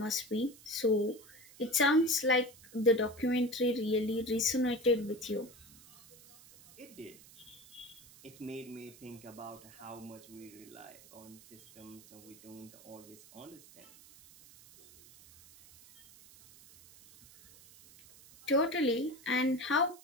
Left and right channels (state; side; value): noise; right; hiss, 22 dB below the sound